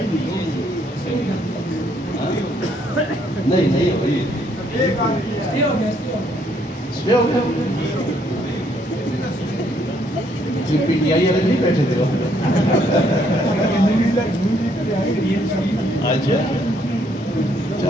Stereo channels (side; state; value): both; normal; correlation 0.69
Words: نہیں ہوئی سپے ہو گیا جی پی ٹی آئی والے نہیں بیٹھے تھے اچھا